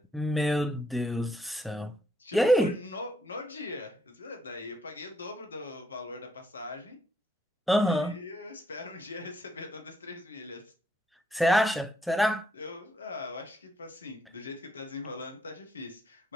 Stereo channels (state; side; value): normal; both; correlation 0.75